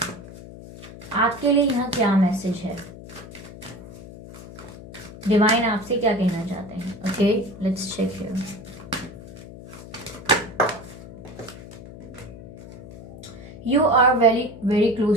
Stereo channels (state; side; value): noise; left; hum, 15 dB below the sound